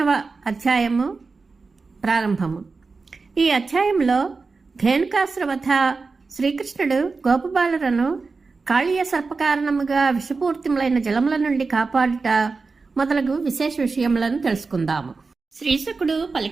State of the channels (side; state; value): left; quieter; 4.2 dB